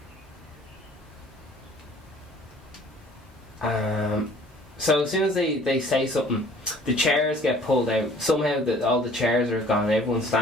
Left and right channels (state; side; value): normal; both; correlation 0.53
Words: So as soon as they say something, the chairs get pulled out. Somehow all the chairs are gone, everyone's